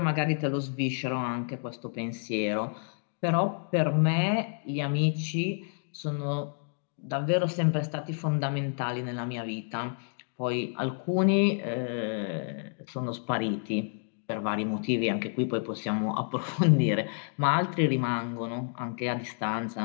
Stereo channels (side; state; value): right; silent; 58 dB below the other